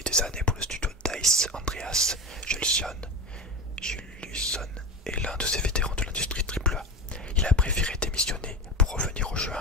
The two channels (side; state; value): both; normal; correlation 0.23